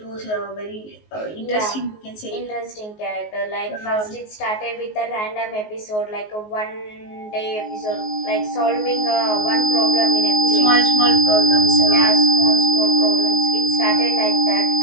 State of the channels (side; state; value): right; late; 19 ms